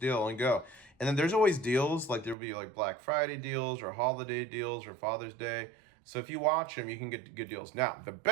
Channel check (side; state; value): left; drops out; at 2.4 s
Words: and go. And then there's always deals, like there'll be like Black Friday deals or holiday deals or Father's Day. So if you watch them, you can get good deals. Now, the